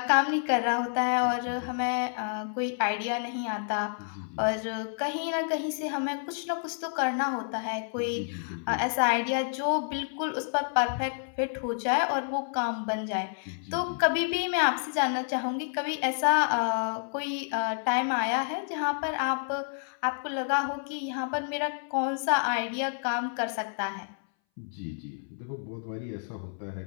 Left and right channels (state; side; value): silent; right; 58 dB below the other